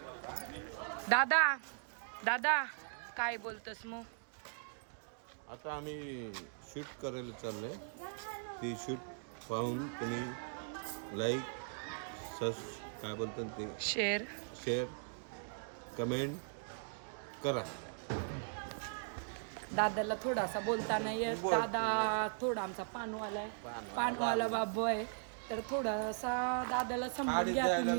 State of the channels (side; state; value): left; silent; digital silence